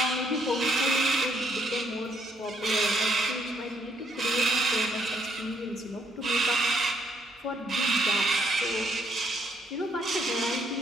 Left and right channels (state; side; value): normal; both; correlation 0.70